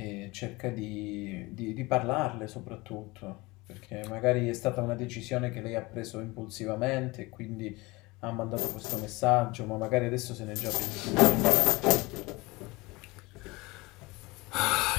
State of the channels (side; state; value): right; quieter; 23.0 dB